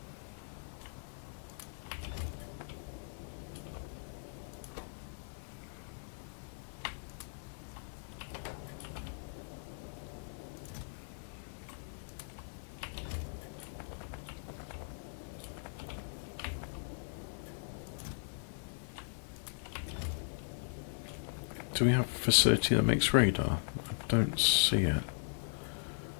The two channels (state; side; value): silent; right; digital silence